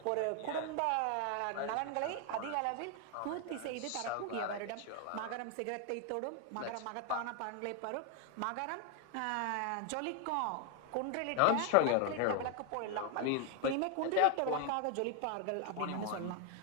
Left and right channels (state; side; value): different; both; correlation 0.01